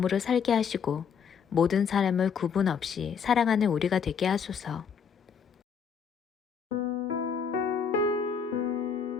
살게 하시고 모든 사람을 구분 없이 사랑하는 우리가 되게 하소서.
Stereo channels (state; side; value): quieter; right; 6.7 dB